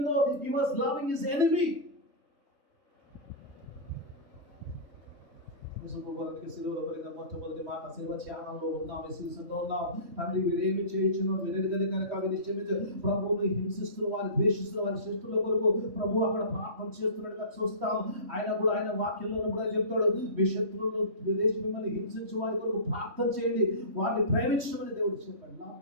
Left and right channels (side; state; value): left; late; 3.1 ms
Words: he was loving his enemy. సిలువలో కలిగిన మొట్టమొదటి మాట, సిలువ త్యాగంలో ఉన్నాం, విశ్వాసంలో ఉన్నాం. తండ్రి వీరేమి చేయించును వీరెరుగని కనుక వినిశ్చయించు. ప్రభువుని హింసిస్తున్న వారి, ద్వేషిస్తున్న వారి శిష్టుల కొరకు ప్రభు అక్కడ ప్రార్థన చేస్తున్నట్టుగా చూస్తాం. ఆయన కూడా ఆయన వాక్యంలో కూడా చెప్తాడు, మీ శత్రువులను మిమ్మల్ని హింసించు వారి కొరకు ప్రార్థన చేయండి, వారిని ప్రేమించమని దేవుడు చెప్పాడు. Love